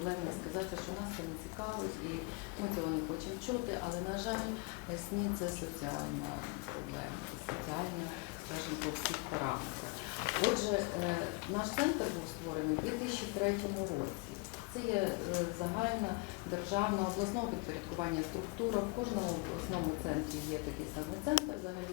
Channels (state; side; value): quieter; right; 26.9 dB